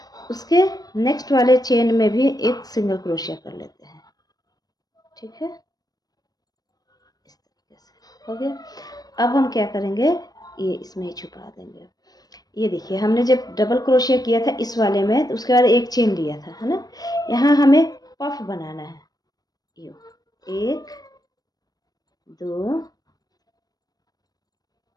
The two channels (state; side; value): late; right; 0.19 ms